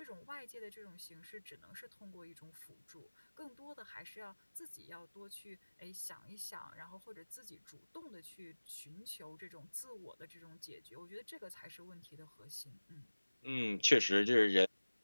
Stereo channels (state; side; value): inverted; both; correlation -1.00